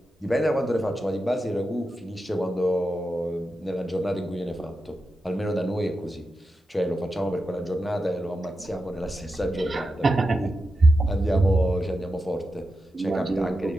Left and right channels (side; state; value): both; normal; correlation 0.89